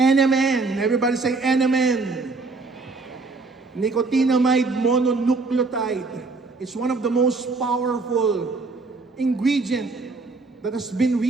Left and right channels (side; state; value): left; quieter; 3.8 dB